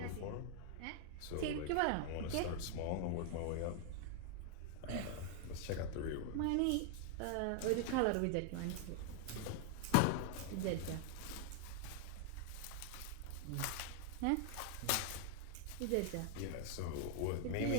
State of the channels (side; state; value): both; different; correlation 0.00